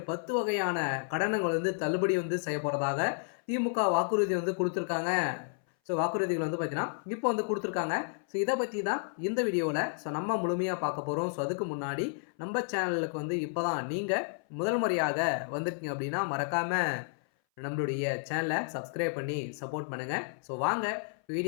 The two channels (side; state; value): right; silent; 57 dB below the other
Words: 10 வகையான கடனுங்கள் வந்து தள்ளுபடி வந்து செய்யப்போறதாக திமுக வாக்குறுதி வந்து குடுத்துருக்காங்க. வாக்குறுதிகள் வந்து பார்த்தீங்கன்னா, இப்போ வந்து குடுத்துருக்காங்க. இத பத்தி தான் இந்த வீடியோல நம்ம முழுமையா பார்க்க போறோம். அதுக்கு முன்னாடி நம்ம சேனலுக்கு வந்து இப்ப தான் நீங்க முதல் முறையாக வந்திருக்கீங்க அப்படின்னா, மறக்காம நம்மளுடைய சேனலை சப்ஸ்கிரைப் பண்ணி சப்போர்ட் பண்ணுங்க. வாங்க